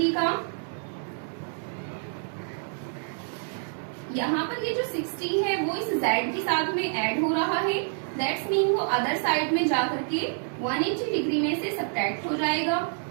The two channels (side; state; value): left; silent; 58 dB below the other